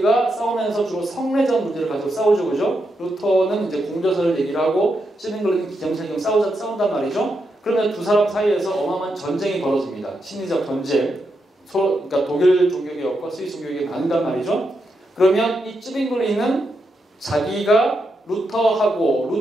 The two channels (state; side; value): normal; both; correlation 0.84